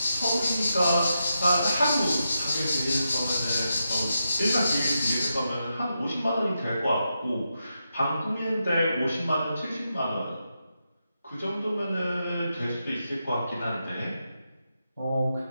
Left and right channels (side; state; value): both; inverted; correlation -0.86